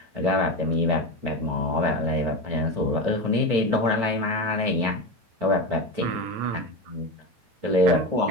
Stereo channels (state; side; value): late; left; 9.0 ms